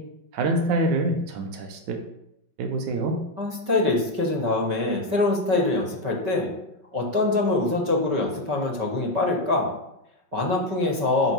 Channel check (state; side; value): late; left; 5.2 ms